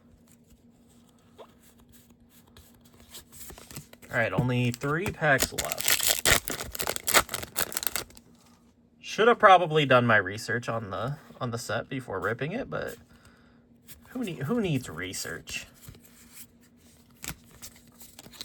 All right, only 3 packs left. Should have probably done my research on the set before ripping it, but who needs research?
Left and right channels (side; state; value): both; identical; correlation 1.00